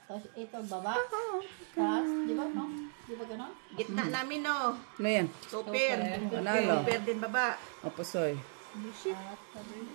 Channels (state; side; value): silent; left; 54 dB below the other